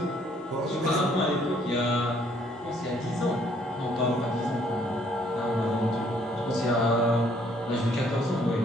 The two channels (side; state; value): both; normal; correlation 0.64